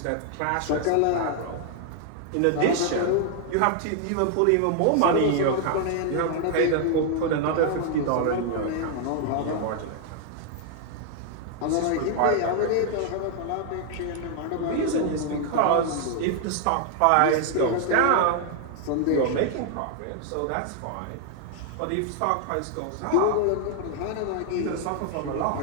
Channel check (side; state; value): both; different; correlation 0.00